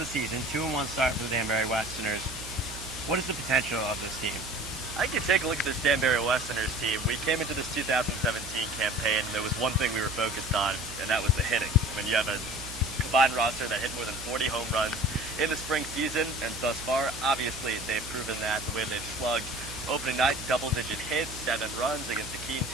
season, 2-1 start for the Danbury Westerners. What is the potential of this team? I think you take a look at this Danbury Westerners team. We came into this 2017 campaign, and there was one thing we were focused on, and that was the hitting. I mean, you have a combined roster that hit more than 40 home runs in the spring season, and thus far, obviously, they've proven that the way they've slugged. Opening night, double-digit hits, 7 runs against a Keene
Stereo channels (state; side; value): noise; right; hum, 13 dB below the sound